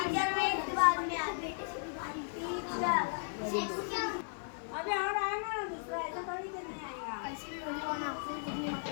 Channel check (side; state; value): right; silent; digital silence